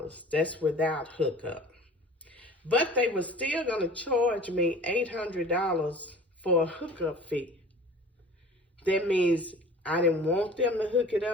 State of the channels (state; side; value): normal; both; correlation 0.44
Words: That's without hookup. But they were still going to charge me $800 for a hookup fee. That means I didn't want them to hook it